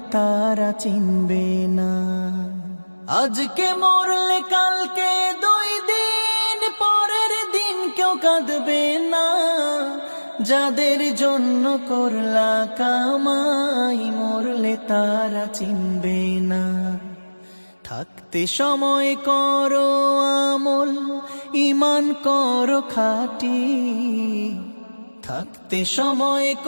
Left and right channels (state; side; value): inverted; both; correlation -1.00